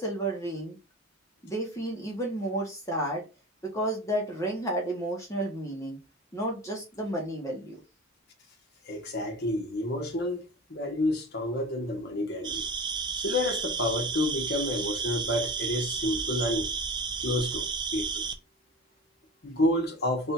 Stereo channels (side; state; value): both; normal; correlation 0.33